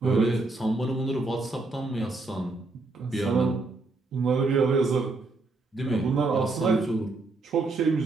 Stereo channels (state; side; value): quieter; left; 3.5 dB